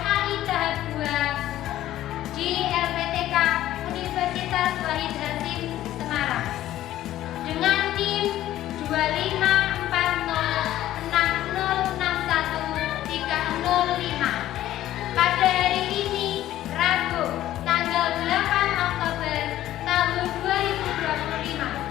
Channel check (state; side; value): quieter; right; 13.6 dB